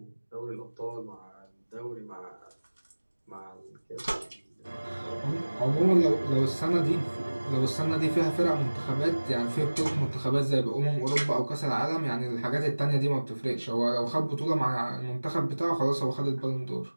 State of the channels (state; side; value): inverted; both; correlation -1.00